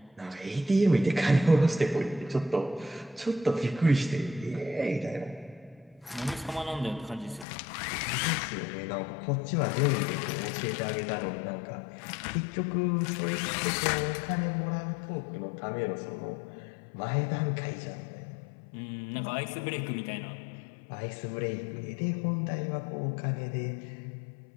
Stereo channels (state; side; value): drops out; right; at 7.5 s